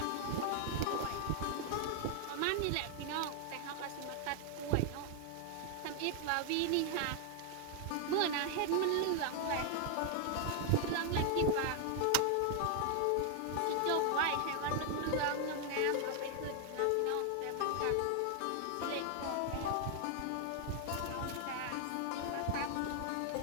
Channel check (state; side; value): different; both; correlation 0.00